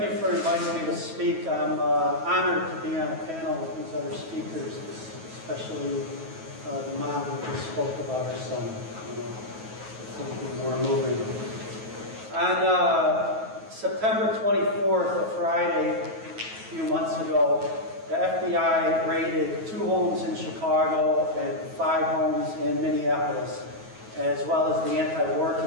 you for inviting me to speak. I'm honored to be on a panel with these other speakers, especially the mom who just spoke about her son. It's going to be more moving. On September 24th, a Friday, a few months ago, the FBI raided 2 homes in Chicago and 5 homes in Minneapolis, as well as the Anti-War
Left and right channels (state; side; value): late; left; 9.2 ms